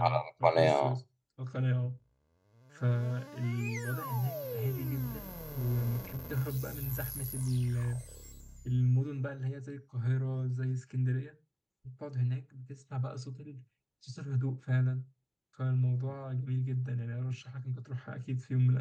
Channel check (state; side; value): identical; both; correlation 1.00